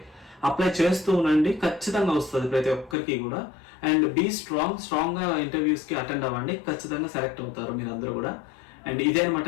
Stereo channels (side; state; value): right; drops out; at 3.0 s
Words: అప్లై చేస్తూ ఉండండి. ఖచ్చితంగా వస్తుంది ప్రతి ఒక్కరికి కూడా. అండ్ బీ స్ట్రాంగ్ గా ఇంటర్వ్యూస్ కి అటెండ్ అవ్వండి. ఖచ్చితంగా సెలెక్ట్ అవుతారు మీరు అందరూ కూడా. అండ్ ఇదే అనమాట